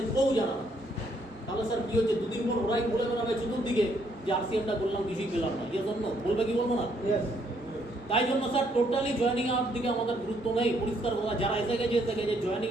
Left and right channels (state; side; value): normal; both; correlation 0.70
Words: কেউ জানে না। তাহলে স্যার কি হচ্ছে, দুদিন পর ওরাই বলে বেড়াবে চতুর্দিকে যে RCM-টা করলাম, কিছুই পেলাম না। ইয়ে জন্য বলবে কি বলবো না? Yes. তাই জন্য স্যার টোটালি জয়েনিং এর দিকে আমাদের গুরুত্ব নেই। পরিষ্কার কথা, যারা এসে গেছে জয়েনিং